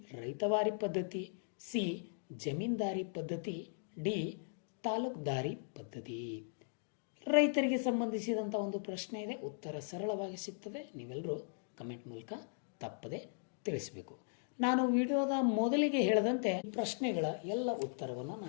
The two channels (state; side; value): silent; right; digital silence